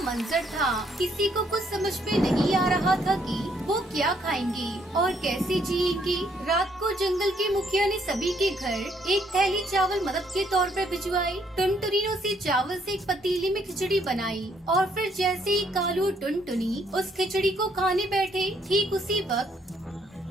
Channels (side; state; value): both; normal; correlation 0.69